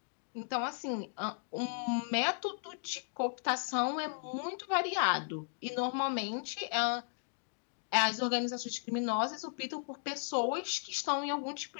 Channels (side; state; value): right; silent; digital silence